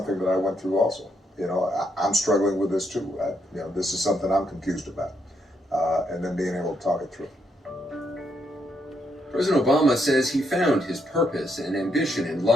that I went through also. I'm struggling with this too. This is something I'm confused about. And then being able to talk it through. President Obama says he found his purpose and ambition in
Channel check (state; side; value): normal; both; correlation 0.77